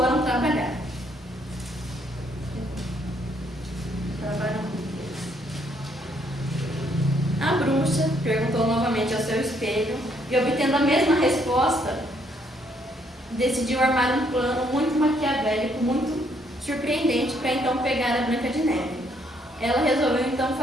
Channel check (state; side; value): normal; both; correlation 0.70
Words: trabalhar. A bruxa perguntou novamente ao seu espelho e, obtendo a mesma resposta, decidiu armar um plano muito maquiavélico, muito surpreendente para então pegar a Branca de Neve. Ela resolveu então